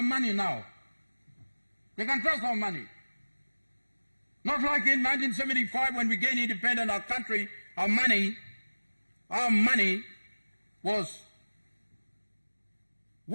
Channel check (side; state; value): both; inverted; correlation -1.00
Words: money now. They can't trust our money. Not like in 1975 when we gained independence, our country, our money was